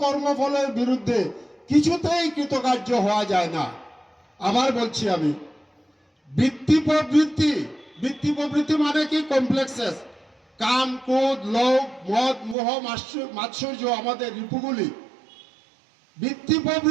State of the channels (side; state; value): left; drops out; at 12.6 s